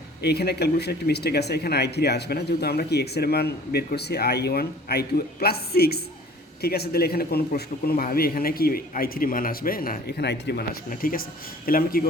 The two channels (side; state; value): both; normal; correlation 0.48